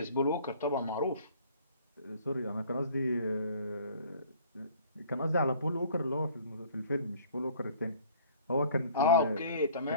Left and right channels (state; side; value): inverted; both; correlation -0.53